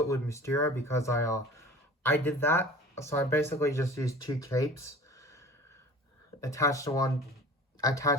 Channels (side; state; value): both; normal; correlation 0.43